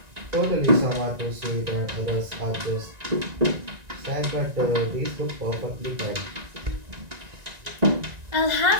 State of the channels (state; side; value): late; left; 1.9 ms